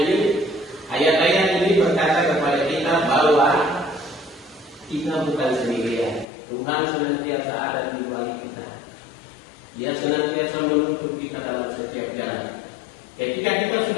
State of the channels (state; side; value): drops out; right; at 6.2 s